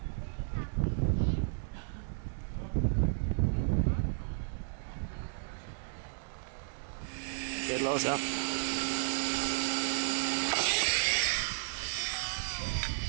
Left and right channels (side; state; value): left; silent; digital silence